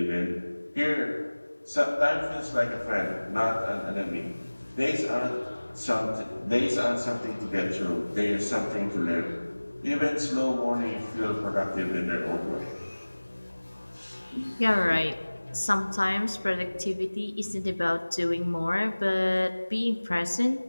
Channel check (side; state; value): both; inverted; correlation -1.00